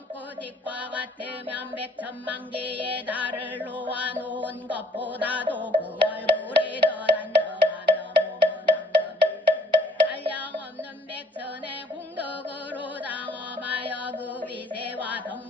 백천만 개의 달을 놓아놓은 것보다도 그 얼굴이 더 단정하며 몸은 한량없는 백천의 공덕으로 당엄하여 그 위세와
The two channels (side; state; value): both; normal; correlation 0.61